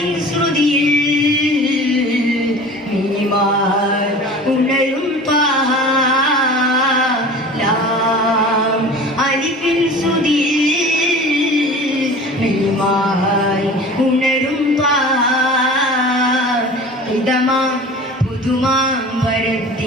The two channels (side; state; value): both; normal; correlation 0.40